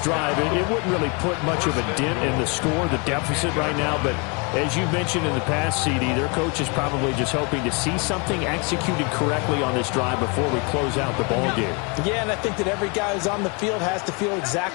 drive, it wouldn't really put much of a dent in the score, the deficit right now. But as you mentioned in the past, CD, their coach is probably just hoping to see something executed correctly on this drive before we close out the ball game. Yeah, and I think that every guy who's on the field has to feel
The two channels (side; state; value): right; quieter; 31.6 dB